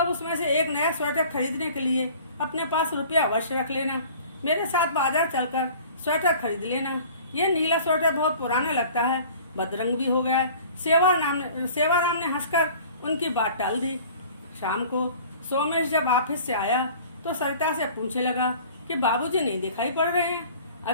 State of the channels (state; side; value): inverted; both; correlation -0.47